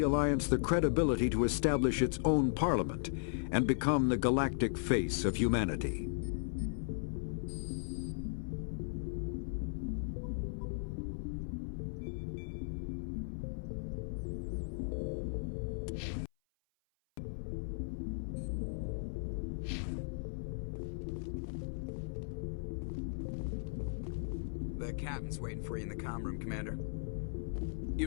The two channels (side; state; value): right; silent; 53 dB below the other